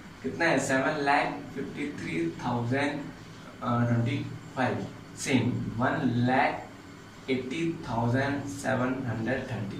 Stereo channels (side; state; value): both; identical; correlation 1.00